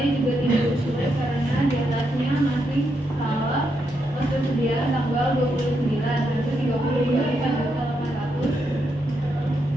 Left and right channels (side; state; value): both; normal; correlation 0.81